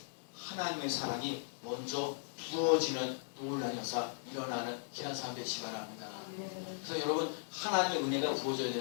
하나님의 사랑이 먼저 부어지는 놀라운 역사 일어나는 귀한 삶 되시기 바랍니다. 그래서 여러분 하나님의 은혜가 부어져야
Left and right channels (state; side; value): silent; right; digital silence